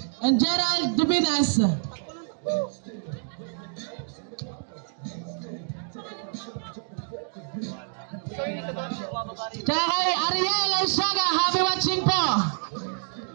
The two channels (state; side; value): silent; left; 59 dB below the other